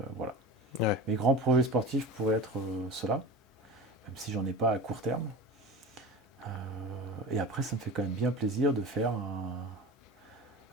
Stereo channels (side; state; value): both; normal; correlation 0.31